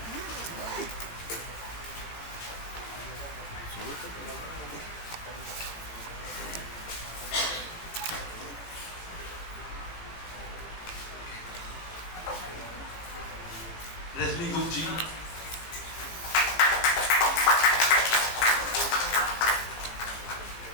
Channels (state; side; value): late; right; 18 ms